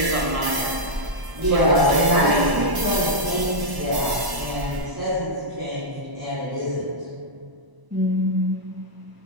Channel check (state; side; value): late; left; 1.0 ms